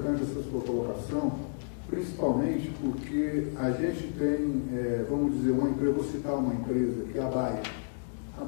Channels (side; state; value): right; silent; digital silence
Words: essa sua colocação, principalmente porque a gente tem, vamos dizer, uma empresa, vou citar uma empresa, que é a Bayer. A